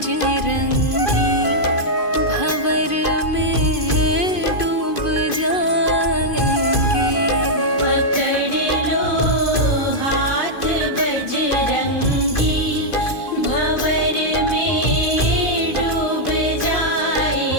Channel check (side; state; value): right; late; 2.5 ms